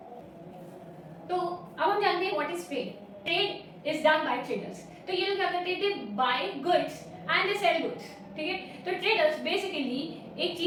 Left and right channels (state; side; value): identical; both; correlation 1.00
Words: तो अब हम जानते हैं what is trade. Trade is done by traders. तो ये लोग क्या करते हैं, they buy goods and they sell goods, ठीक है। तो ट्रेडर्स बेसिकली एक